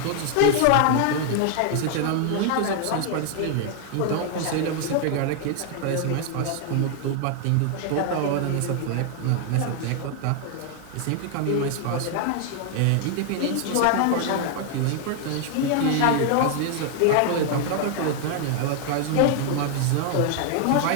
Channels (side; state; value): both; different; correlation 0.00